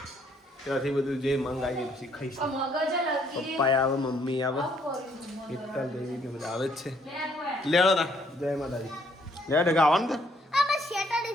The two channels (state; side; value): normal; both; correlation 0.67